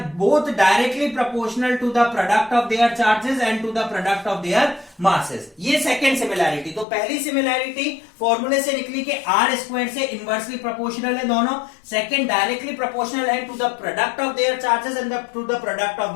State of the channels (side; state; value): right; drops out; at 6.9 s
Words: both directly proportional to the product of their charges and to the product of their masses. ये second similarity. तो पहली similarity फॉर्मूले से निकली कि r square से inversely proportional है दोनों. सेकंड डायरेक्टली प्रोपोर्शनल है to the product of their charges and to the product of